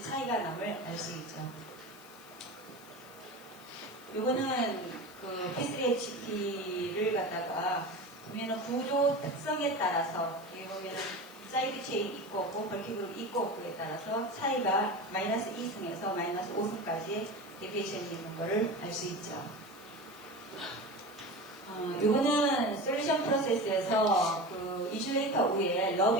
차이가 남을 알 수 있죠. 요거는 그 P3HP를 갖다가 보면은 구조 특성에 따라서 여기 보면은 사이드 체인 있고 없고 벌키그룹 있고 없고에 따라서 차이가 마이너스 2승에서 마이너스 5승까지 데비에이션이 있는 거를 알 수 있죠. 요거는 솔루션 프로세스에서 그 이슈레이터 위에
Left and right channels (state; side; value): noise; left; hiss, 22 dB below the sound